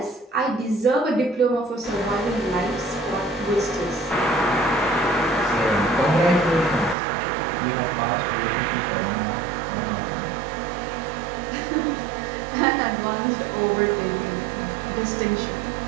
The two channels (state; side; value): drops out; left; at 7.0 s